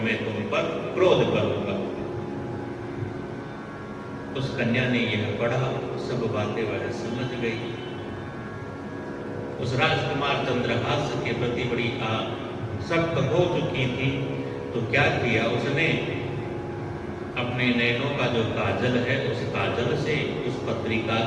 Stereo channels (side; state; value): both; identical; correlation 1.00